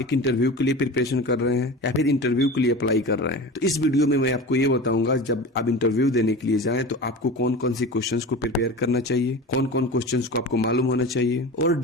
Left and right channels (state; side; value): normal; both; correlation 0.32